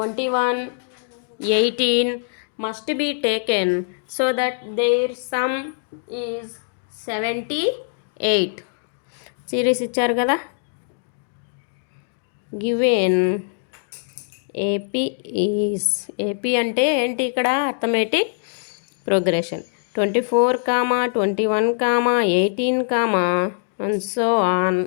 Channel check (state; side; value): silent; right; digital silence